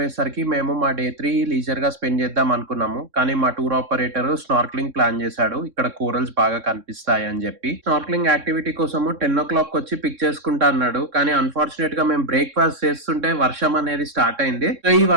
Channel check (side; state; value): left; late; 3.6 ms